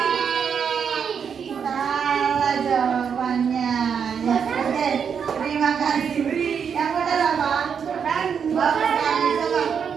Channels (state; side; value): quieter; left; 7.0 dB